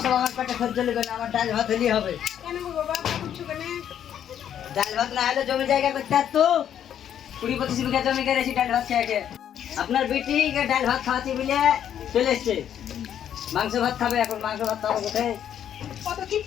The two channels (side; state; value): right; quieter; 9.7 dB